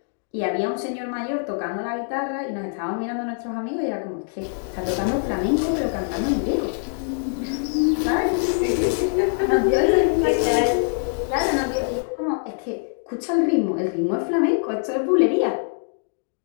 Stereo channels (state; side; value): silent; right; 63 dB below the other